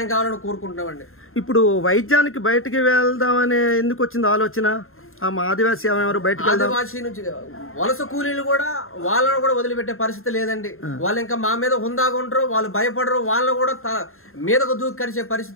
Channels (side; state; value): right; late; 0.61 ms